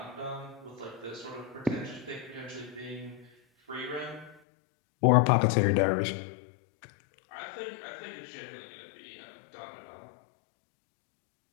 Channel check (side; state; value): right; drops out; at 4.4 s